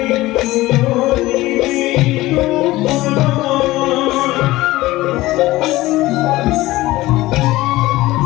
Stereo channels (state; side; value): quieter; right; 18.1 dB